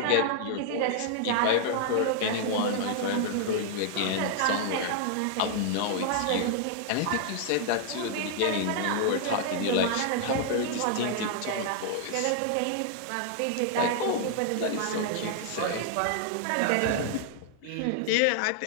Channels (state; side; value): different; both; correlation -0.01